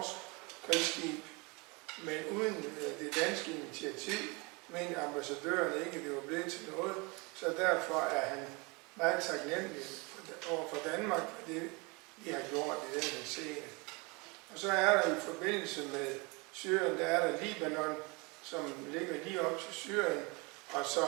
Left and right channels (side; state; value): left; quieter; 28.2 dB